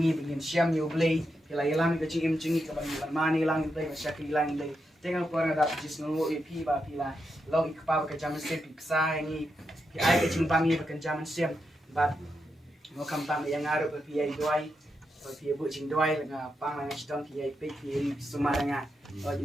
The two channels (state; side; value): normal; both; correlation 0.85